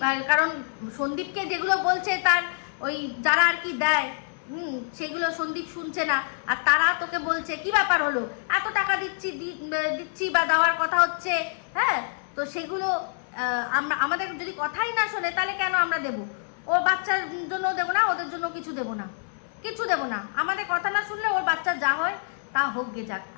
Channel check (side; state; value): right; silent; 61 dB below the other